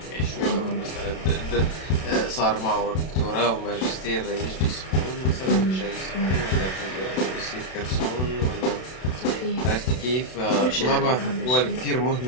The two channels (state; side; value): late; right; 32 ms